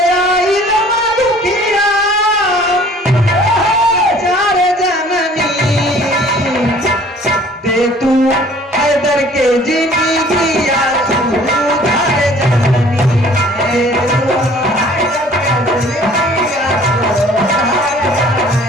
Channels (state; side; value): normal; both; correlation 0.53